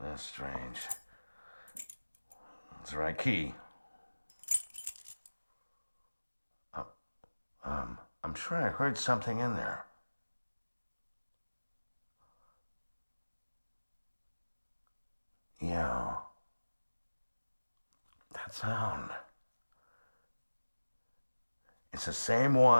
That's strange. It's the right key. I'm sure I heard something in there. Yeah. That sound. It's the same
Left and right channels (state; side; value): inverted; both; correlation -1.00